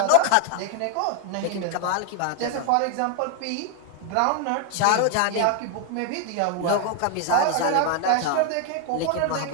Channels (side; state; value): both; different; correlation 0.00